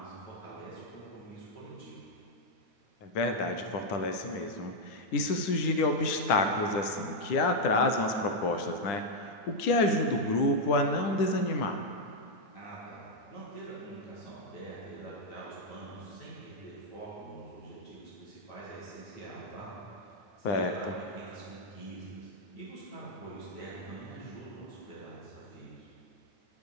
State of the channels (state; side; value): late; right; 10 ms